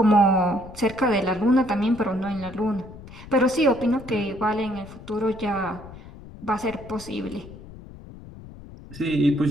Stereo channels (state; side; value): noise; left; rumble, 16 dB below the sound